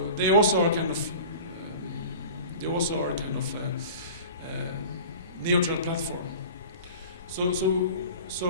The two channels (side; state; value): both; inverted; correlation -0.39